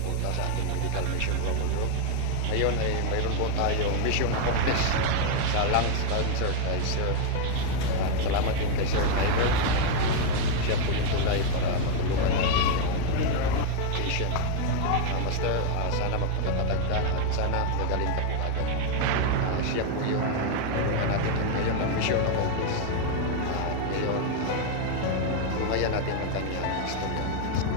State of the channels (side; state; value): both; different; correlation 0.01